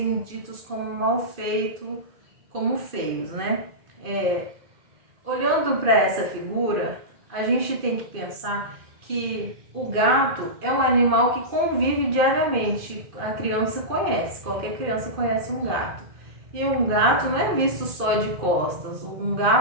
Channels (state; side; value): late; left; 2.4 ms